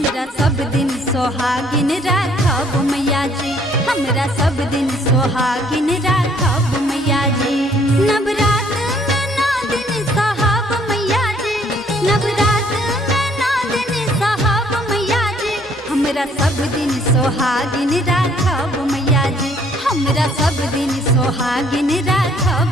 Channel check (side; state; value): both; normal; correlation 0.62